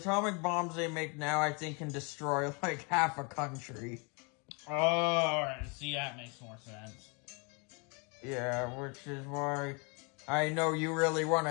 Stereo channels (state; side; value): quieter; right; 33.2 dB